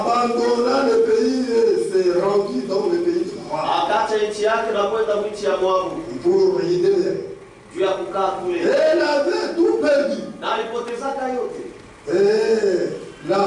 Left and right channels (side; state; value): both; identical; correlation 1.00